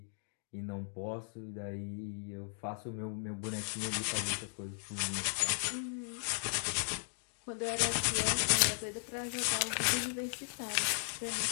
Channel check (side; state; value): right; silent; digital silence